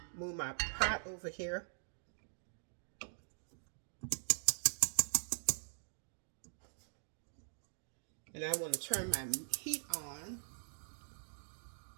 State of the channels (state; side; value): silent; left; digital silence